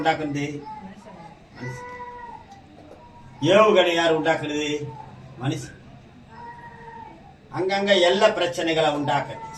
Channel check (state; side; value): identical; both; correlation 1.00